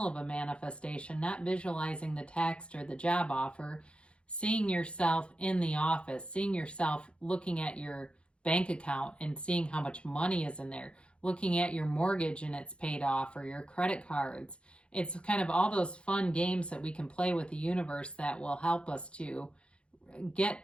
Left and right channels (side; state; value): right; late; 0.058 ms